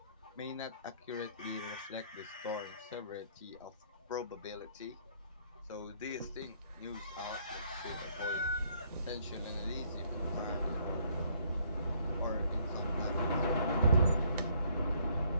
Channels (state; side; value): inverted; both; correlation -0.65